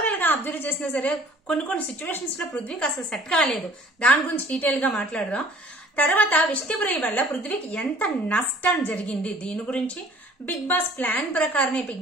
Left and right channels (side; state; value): both; normal; correlation 0.52